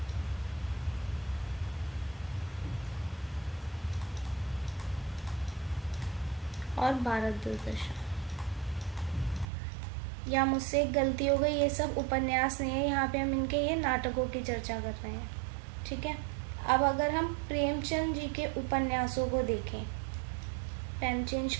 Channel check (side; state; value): left; drops out; at 9.5 s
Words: और भारत दूरदर्शन। या मुझसे एक गलती हो गई, ये सब उपन्यास नहीं है, यहाँ पे हम इनके ये नाटकों की चर्चा कर रहे हैं। ठीक है, अब अगर हम प्रेमचंद जी के उपन्यासों को देखें, पेन चेंज